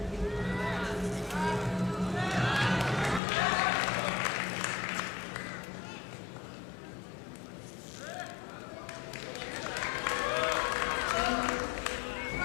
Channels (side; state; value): right; drops out; at 3.2 s